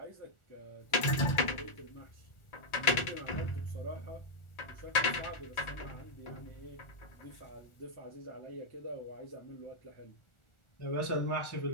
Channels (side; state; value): right; late; 1.4 ms